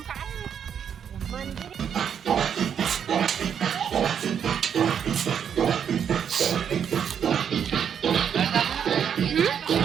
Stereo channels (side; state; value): left; quieter; 8.1 dB